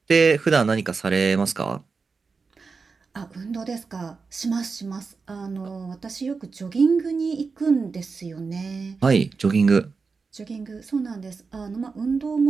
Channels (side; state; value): left; quieter; 4.7 dB